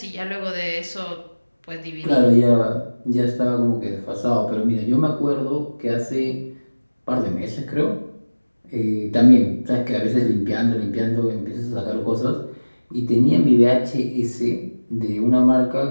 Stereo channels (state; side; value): inverted; both; correlation -1.00